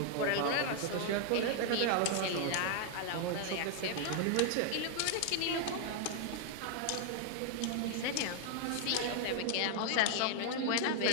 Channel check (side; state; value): both; different; correlation 0.00